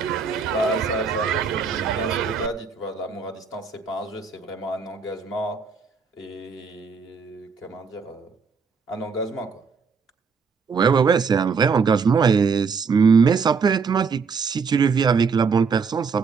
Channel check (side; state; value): left; quieter; 5.3 dB